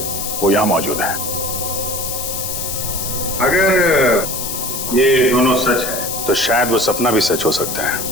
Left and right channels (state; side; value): noise; left; hiss, 4 dB below the sound